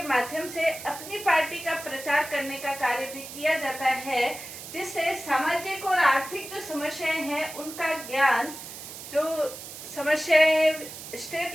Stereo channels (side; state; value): right; noise; hiss, 12 dB below the sound